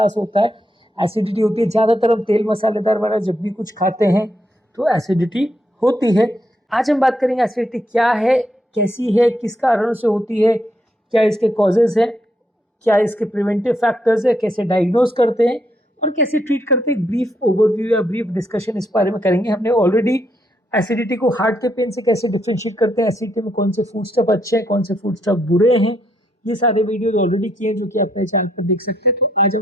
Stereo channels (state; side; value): normal; both; correlation 0.76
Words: होता है, एसिडिटी होती है। ज़्यादातर हम तेल मसालेदार वाला जब भी कुछ खाते हैं तो एसिडिटी होती है। आज हम बात करेंगे एसिडिटी क्या है, कैसी है, किस कारण से होती है, क्या इसके कॉजेज़ हैं, क्या इसके प्रिवेंटिव फैक्टर्स है, कैसे डायग्नोज करते हैं और कैसे ट्रीट करते हैं। ब्रीफ ओवरव्यू या ब्रीफ डिस्कशन इस बारे में करेंगे। हमने ऑलरेडी एसिडिटी को हार्ट के पेन से कैसे डिफरेंशिएट करते हैं, एसिडिटी में कौन से फूड स्टफ अच्छे हैं, कौन से फूड स्टफ बुरे हैं, ये सारे वीडियोज ऑलरेडी किए हैं जो कि आप मेरे चैनल पर देख सकते हैं। तो आज